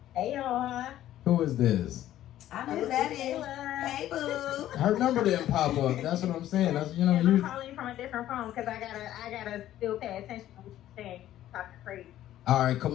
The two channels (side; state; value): right; quieter; 12.9 dB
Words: Hey y'all. Who is this? I I know who that is. Hey, boo. Her number didn't pop up. That's what I'm saying. That's And I'm calling you from a different phone because I gotta still pay attention to what you're saying. You're talking crazy. All right, come